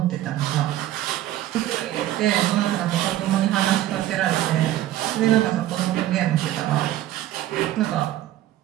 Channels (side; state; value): left; quieter; 13.6 dB